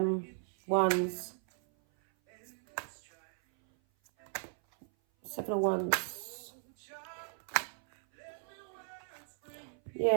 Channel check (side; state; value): left; silent; 53 dB below the other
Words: Wands. 7 of Wands.